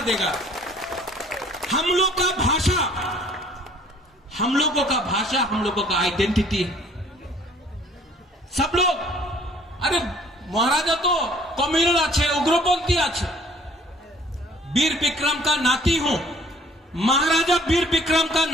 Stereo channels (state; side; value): normal; both; correlation 0.56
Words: देगा? हम लोग का भाषा, हम लोगों का भाषा, हम लोगों का आइडेंटिटी है। सब लोग, अरे महाराजा तो कम्युनल आछे, उग्रपंथी आछे, वीर विक्रम का नाती हूं, महाराजा वीर विक्रम का